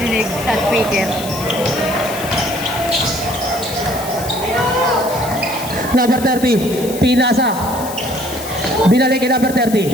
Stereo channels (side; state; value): left; noise; hiss, 12 dB below the sound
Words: sa speaker. Number 30. Pinasa. Binalik kay number